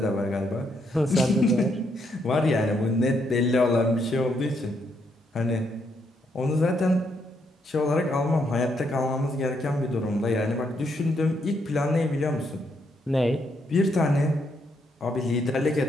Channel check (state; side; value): normal; both; correlation 0.76